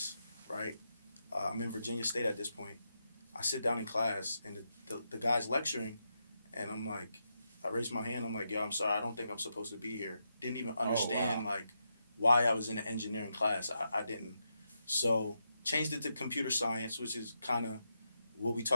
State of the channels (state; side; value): inverted; both; correlation -0.84